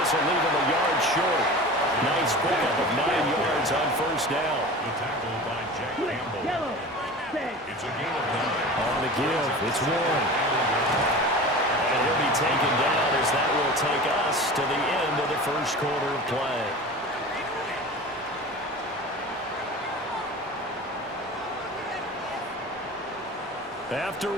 this will leave him a yard short. Nice pickup of 9 yards on first down. The tackle by Jack Campbell. It's a gain of 9. On the give, it's one. And he'll be taken down as that will take us to the end of the first quarter of play. After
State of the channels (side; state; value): both; normal; correlation 0.35